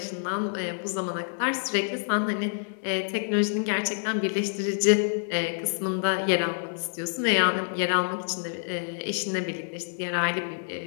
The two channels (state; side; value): silent; right; 60 dB below the other